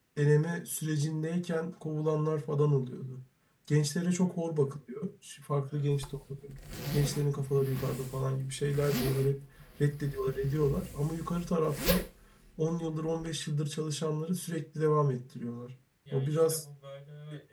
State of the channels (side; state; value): both; identical; correlation 1.00